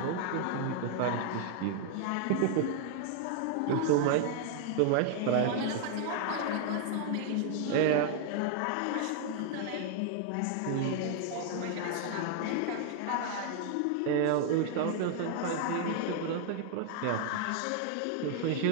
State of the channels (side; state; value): both; different; correlation 0.00